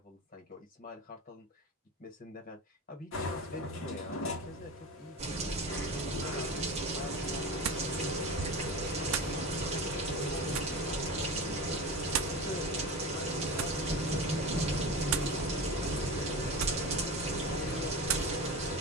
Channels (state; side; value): normal; both; correlation 0.28